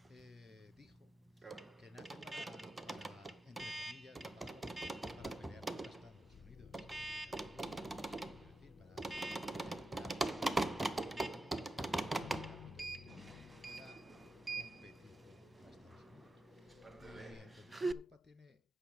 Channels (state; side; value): normal; both; correlation 0.90